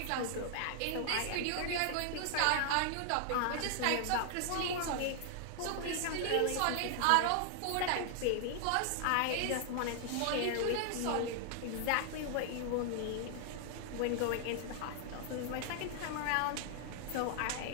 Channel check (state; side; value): different; both; correlation 0.00